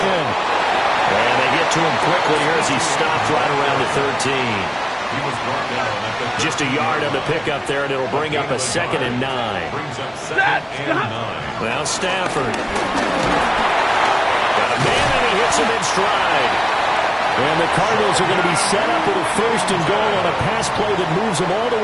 And they get to him quickly here as he stopped right around the 13. He was brought down at the Just a yard on the pickup there, and it'll bring up a 2nd and 9. brings up 2nd and 9. Now Stafford. Got a man, and he hits him in stride. And the Cardinals are going to be set up with a 1st and goal on a pass play that moves them all the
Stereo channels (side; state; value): both; identical; correlation 1.00